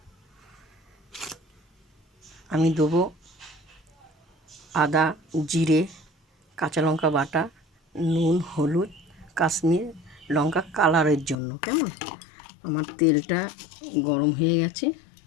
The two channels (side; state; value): right; drops out; at 11.4 s